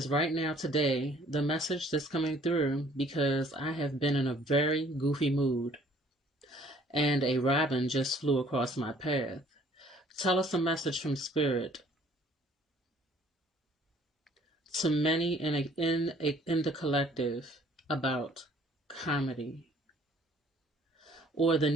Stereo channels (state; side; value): normal; both; correlation 0.57